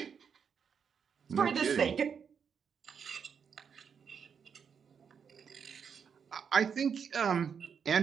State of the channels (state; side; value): quieter; left; 6.9 dB